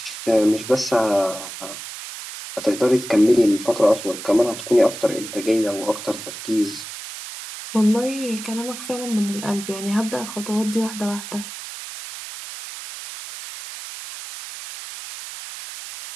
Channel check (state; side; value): noise; right; hiss, 11 dB below the sound